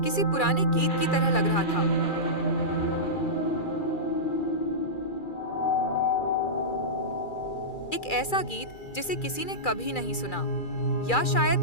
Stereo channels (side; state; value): right; late; 2.4 ms